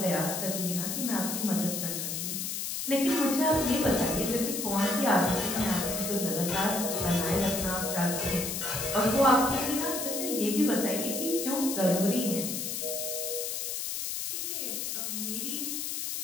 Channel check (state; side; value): noise; left; hiss, 3 dB below the sound